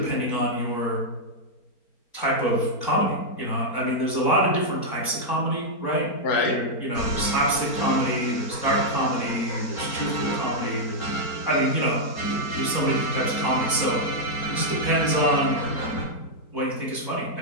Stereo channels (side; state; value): right; late; 4.4 ms